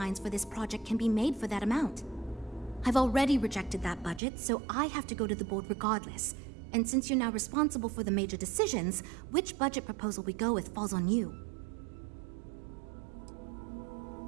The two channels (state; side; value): drops out; left; at 4.2 s